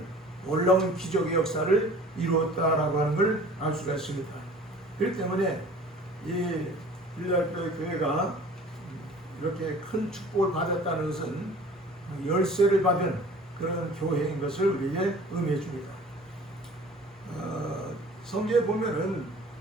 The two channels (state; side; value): normal; both; correlation 0.47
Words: 놀라운 기적의 역사를 이루었다라고 하는 걸 알 수가 있습니다. 그렇기 때문에 이 빌라델피아 교회가 이렇게 큰 축복을 받았다는 것은 열쇠를 받은 그런 교회인 것을 우리에게 의미해 줍니다. 성경에 보면은